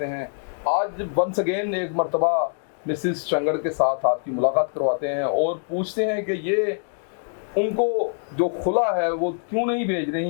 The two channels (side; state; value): right; silent; digital silence